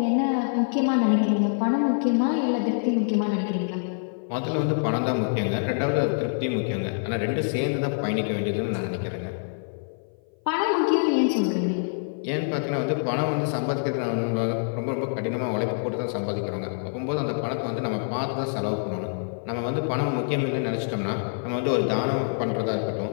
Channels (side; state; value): right; silent; 57 dB below the other